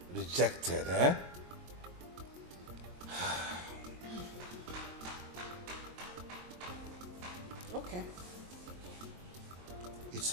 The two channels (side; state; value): left; late; 22 ms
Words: rejected, eh? Okay. It's